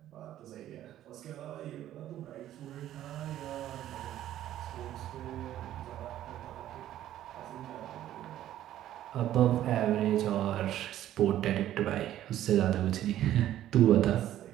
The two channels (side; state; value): left; quieter; 12.5 dB